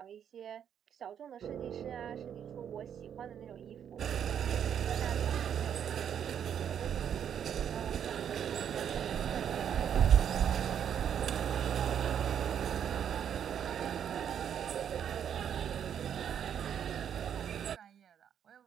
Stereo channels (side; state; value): left; quieter; 8.8 dB